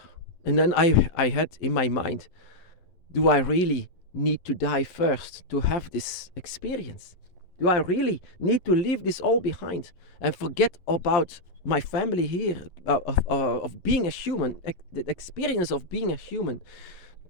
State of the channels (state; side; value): late; right; 11 ms